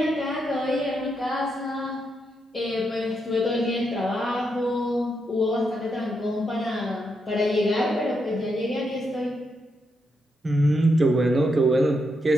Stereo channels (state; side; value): normal; both; correlation 0.81